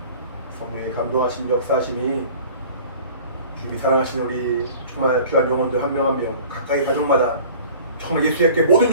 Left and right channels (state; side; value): inverted; both; correlation -0.45